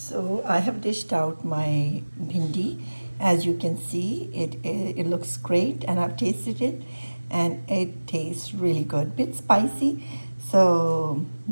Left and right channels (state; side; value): inverted; both; correlation -1.00